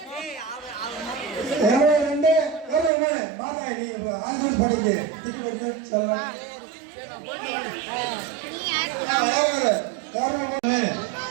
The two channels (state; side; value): drops out; left; at 2.9 s